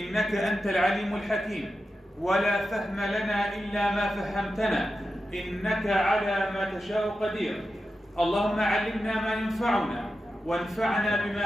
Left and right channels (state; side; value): normal; both; correlation 0.91